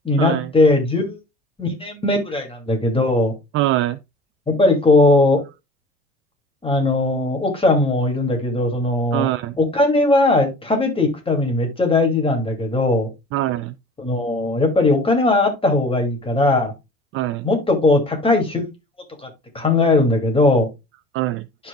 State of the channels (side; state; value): both; normal; correlation 0.44